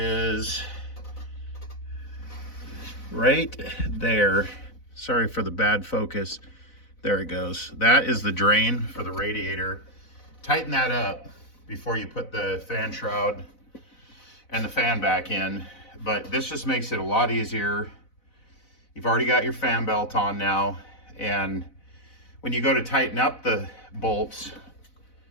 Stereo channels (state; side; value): late; right; 4.0 ms